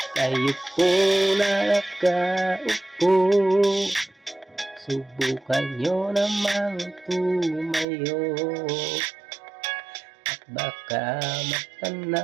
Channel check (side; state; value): left; drops out; at 7.9 s